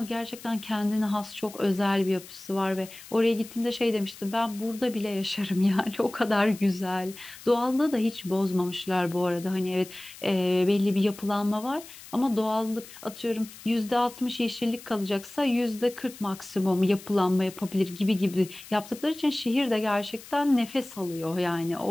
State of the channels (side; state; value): left; noise; hiss, 17 dB below the sound